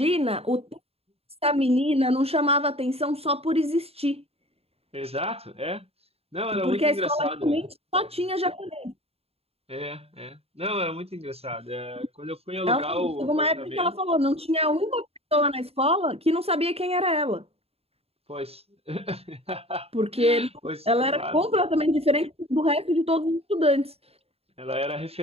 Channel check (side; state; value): left; late; 0.29 ms